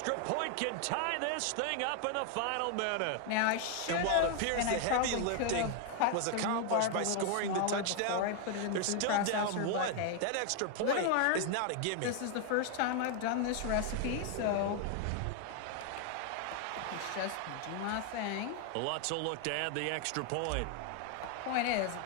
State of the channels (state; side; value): different; both; correlation 0.00